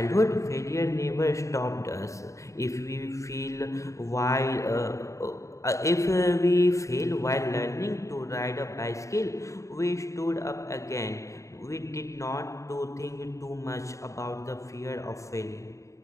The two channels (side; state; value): right; late; 0.15 ms